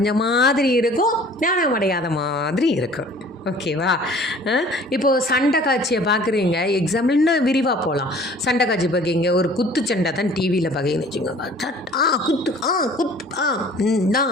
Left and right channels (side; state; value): both; normal; correlation 0.50